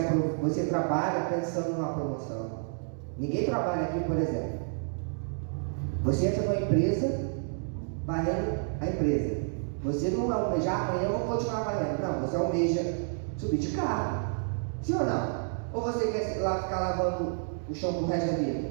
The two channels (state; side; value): silent; left; digital silence